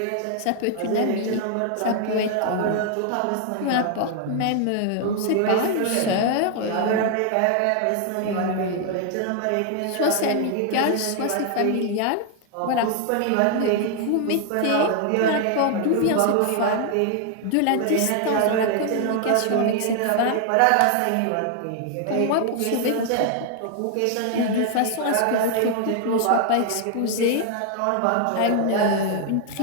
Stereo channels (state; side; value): different; both; correlation 0.00